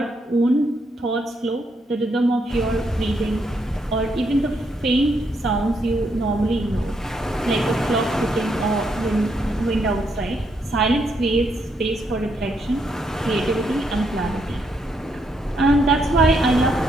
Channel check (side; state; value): both; normal; correlation 0.76